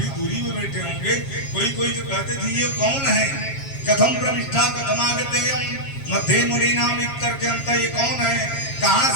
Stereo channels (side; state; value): right; late; 7.3 ms